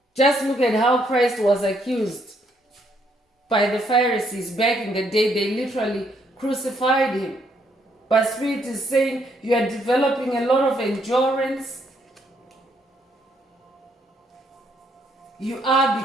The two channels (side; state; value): both; normal; correlation 0.72